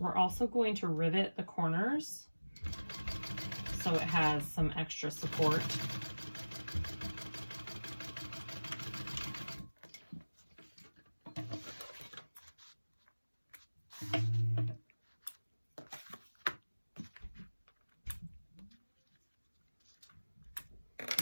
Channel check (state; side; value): inverted; both; correlation -1.00